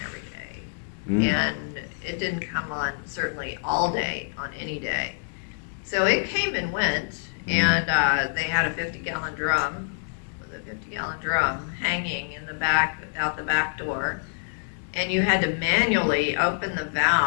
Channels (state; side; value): silent; right; digital silence